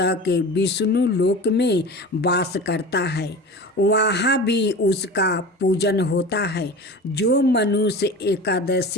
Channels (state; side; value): normal; both; correlation 0.34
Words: विष्णु लोक में वास करता है, वहाँ भी उसका पूजन होता है। जो मनुष्य